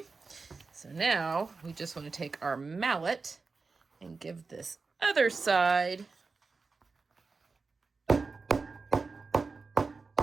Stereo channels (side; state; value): left; quieter; 4.3 dB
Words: so now we just want to take our mallet and give this other side a